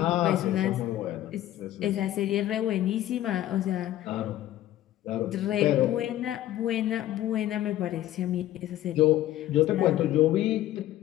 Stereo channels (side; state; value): right; quieter; 13.7 dB